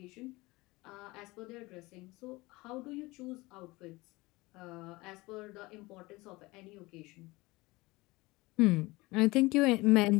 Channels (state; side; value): quieter; right; 21.9 dB